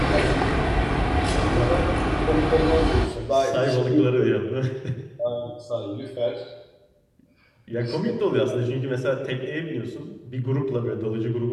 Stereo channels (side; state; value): both; identical; correlation 1.00